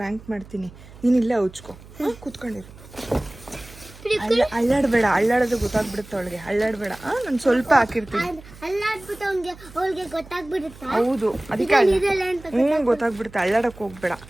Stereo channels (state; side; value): noise; right; hum, 20 dB below the sound